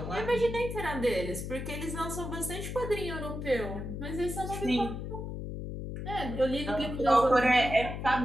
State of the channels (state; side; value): noise; left; hum, 6 dB below the sound